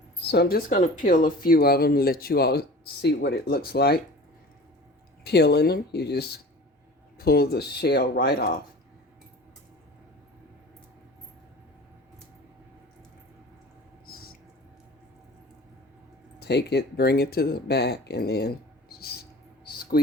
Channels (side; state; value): both; normal; correlation 0.40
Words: So I'm just going to peel a few of them and let you all see what it looks like. Peeling them, you just pull the shell right off. Take it, bring it to the back, and then